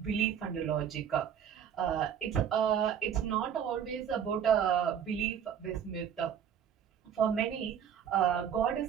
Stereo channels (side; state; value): left; quieter; 8.6 dB